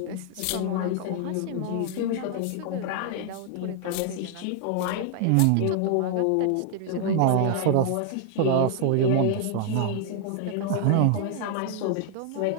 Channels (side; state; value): both; different; correlation 0.00